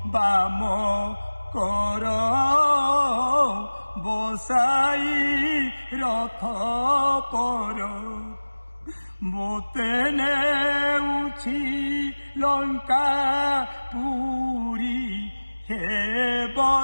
ବାମ କର বসাই রথ পর মোতে নেউছি লঙ্কা পুরী হে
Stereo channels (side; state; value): both; inverted; correlation -1.00